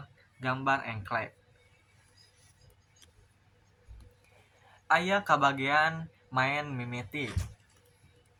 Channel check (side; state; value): both; identical; correlation 1.00